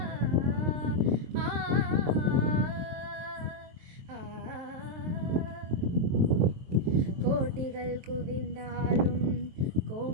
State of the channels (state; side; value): late; left; 23 ms